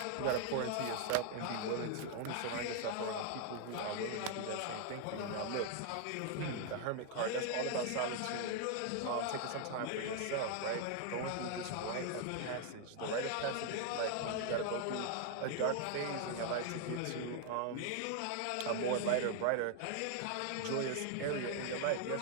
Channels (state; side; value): different; both; correlation 0.00